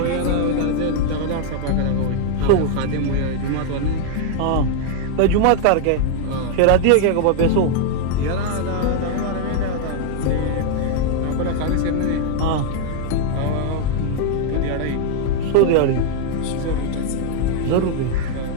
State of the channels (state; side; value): different; both; correlation 0.00